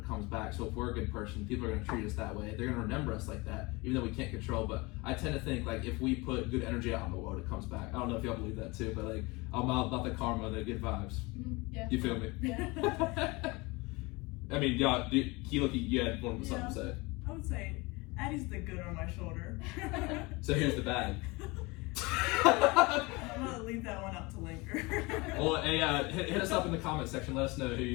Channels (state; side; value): quieter; right; 24.7 dB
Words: comes back. So if we're a good person, people are going to treat us that way. They're going to remember us like that, even though we can't control. But I tend to think like if we put good energy out in the world, it comes back. I don't know if y'all believe that too, but like I'm all about the karma, the good vibes. Yeah. You feel me? Yeah. I mean, y'all, you had something to say. I would say Addy's the good on my shoulder. So here's the bad. I'm gonna leave that one up to linger. Well, hey, hit us up in the comment section. Let us know who